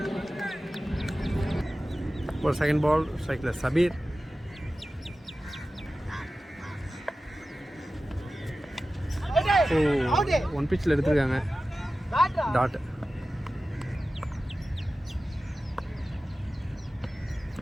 ஒரு செகண்ட் பால், ஸ்ட்ரைக்கில் சபீர். ஓ 1 பிச்சில் எடுத்துருக்காங்க, டாட்.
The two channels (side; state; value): both; normal; correlation 0.95